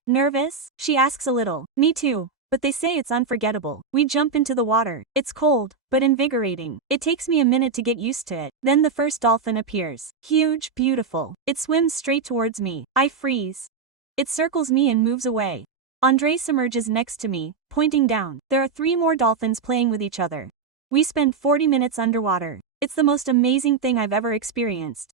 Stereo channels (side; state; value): left; quieter; 5.3 dB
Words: Nervous? She asks a little. Me too. But they say it's unforgettable. We jump into the water. It's cold, but invigorating. It takes me a minute to get used to it. Then the first dolphin appears. Huge, beautiful. It swims straight towards me. I freeze. It circles me and moves away. Andres emerges next to me, pointing down. There are 3 more dolphins playing with each other. We spend 40 minutes underwater. It's the most amazing thing I've ever experienced.